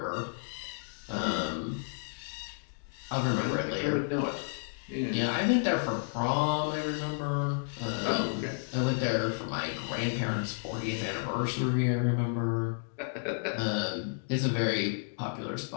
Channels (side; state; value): right; silent; digital silence